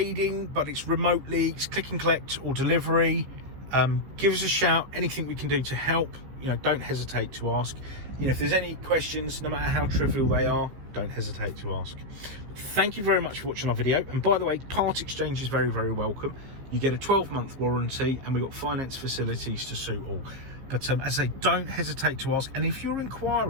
but it's remotely. It's click and collect or delivery. Give us a shout. Anything we can do to help, you know, don't hesitate to ask. You know, if there's any questions, no matter how trivial they are, don't hesitate to ask. Thank you very much for watching our video. And by the way, part exchange is very, very welcome. You get a 12-month warranty, and we've got finance facilities to suit all. But as I say, don't hesitate to ask. And if you're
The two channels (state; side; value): late; left; 15 ms